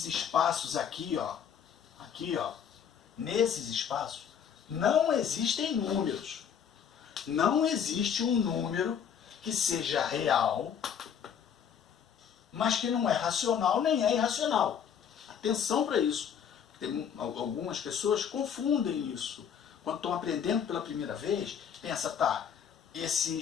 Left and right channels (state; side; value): quieter; right; 8.0 dB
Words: espaços aqui, nesses espaços, não existem números. Não existe um número que seja real, mas que não é racional nem é irracional. Atenção para isso. Tem algumas pessoas confundem isso. Quando estão aprendendo pela primeira vez, pensa, tá, esse